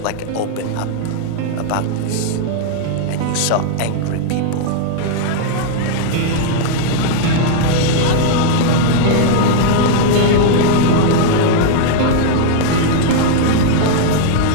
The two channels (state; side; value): different; both; correlation -0.01